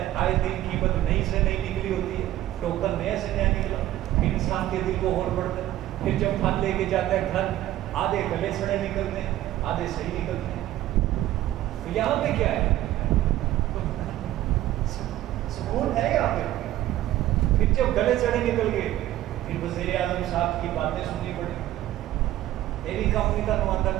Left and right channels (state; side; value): quieter; left; 14.1 dB